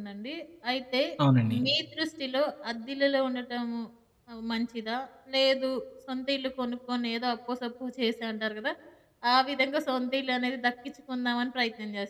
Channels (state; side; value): identical; both; correlation 1.00